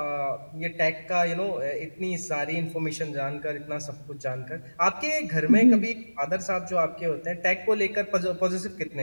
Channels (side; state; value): both; inverted; correlation -1.00